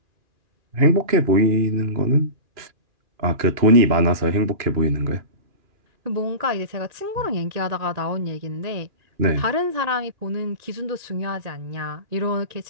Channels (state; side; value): late; left; 2.4 ms